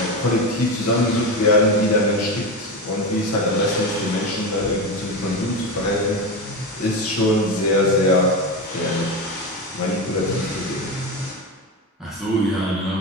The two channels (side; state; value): both; normal; correlation 0.18